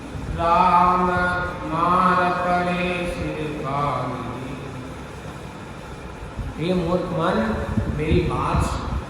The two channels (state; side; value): identical; both; correlation 1.00